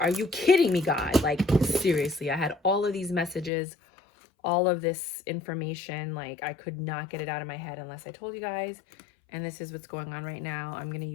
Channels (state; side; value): drops out; right; at 3.5 s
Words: you kidding me, God? Like, seriously, I had all of these messages, all of this information. Like, I could not get it out of my head unless I told you guys. And this is what's going on right now. I'm going to